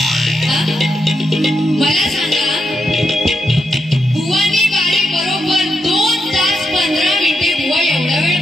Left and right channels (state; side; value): normal; both; correlation 0.83